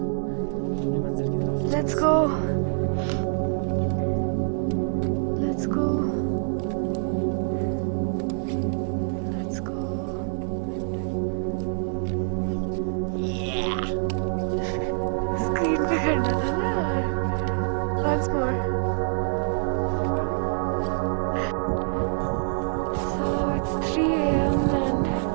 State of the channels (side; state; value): left; silent; digital silence